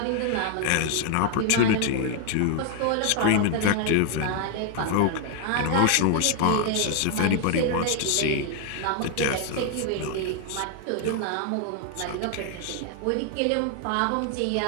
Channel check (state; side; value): different; both; correlation 0.00